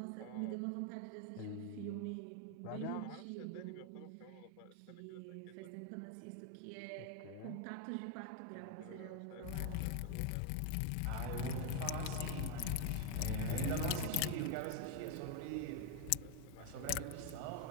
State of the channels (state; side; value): different; both; correlation 0.01